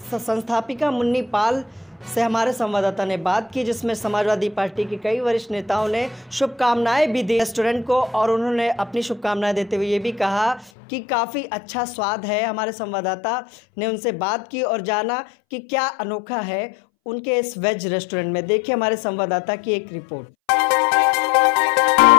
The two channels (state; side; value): drops out; right; at 10.7 s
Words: संस्थापिका मुन्नी पाल से हमारे संवाददाता ने बात की, जिसमें समाजवादी पार्टी के कई वरिष्ठ नेताओं ने शुभकामनाएं भी दी रेस्टोरेंट को और उन्होंने अपनी शुभकामनाएं देते हुए ये भी कहा कि काफ़ी अच्छा स्वाद है। हमारे संवाददाता ने उनसे बात की और जाना कि क्या अनोखा है उनके इस वेज रेस्टोरेंट में। देखिए हमारे संवाददाता की एक रिपोर्ट।